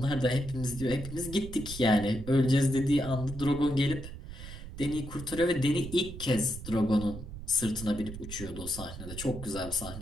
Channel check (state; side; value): noise; right; rumble, 11 dB below the sound